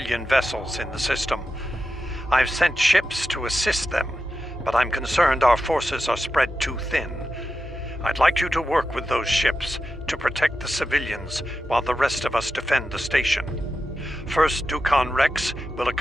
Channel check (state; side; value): normal; both; correlation 0.91